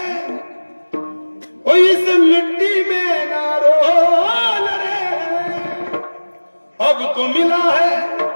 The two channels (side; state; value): both; inverted; correlation -1.00